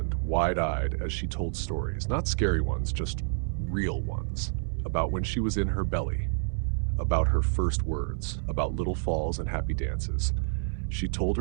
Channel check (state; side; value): silent; left; 59 dB below the other